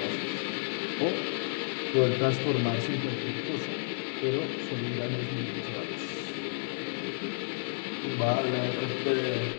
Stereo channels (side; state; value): right; silent; digital silence